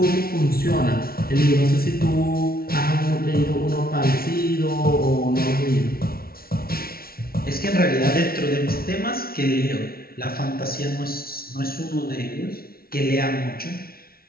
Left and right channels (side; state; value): right; late; 0.44 ms